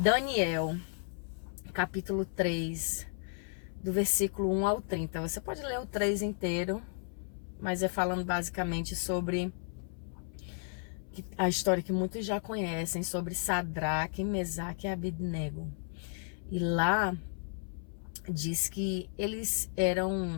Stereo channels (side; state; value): right; silent; 55 dB below the other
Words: capítulo 3, do versículo 1 ao 30. Você pode ler o 3 inteiro, mas é falando basicamente sobre a história que muitos já conhecem, sobre Sadraque, Mesaque e Abednego. E lá diz que eles